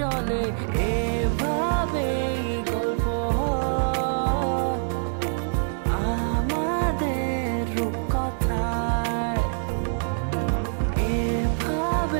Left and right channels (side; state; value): left; silent; digital silence